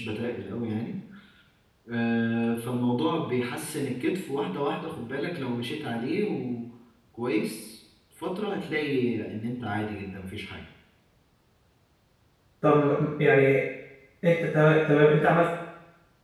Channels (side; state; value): both; identical; correlation 1.00